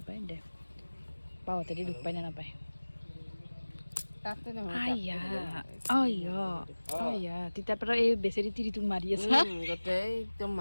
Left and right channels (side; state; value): both; inverted; correlation -1.00